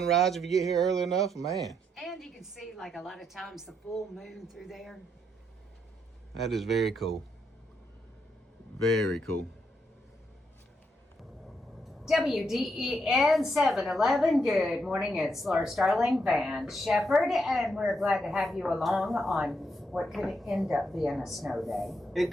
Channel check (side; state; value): both; normal; correlation 0.78